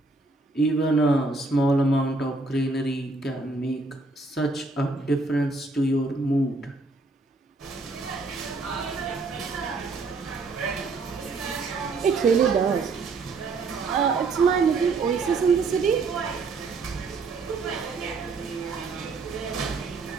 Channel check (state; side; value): quieter; left; 3.7 dB